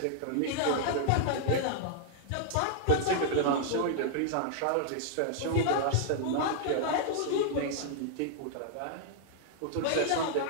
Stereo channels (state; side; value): different; both; correlation -0.01